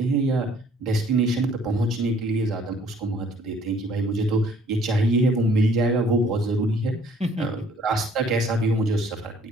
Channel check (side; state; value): both; normal; correlation 0.59